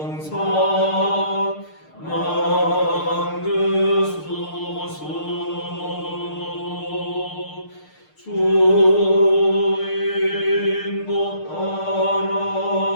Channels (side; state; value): right; late; 6.6 ms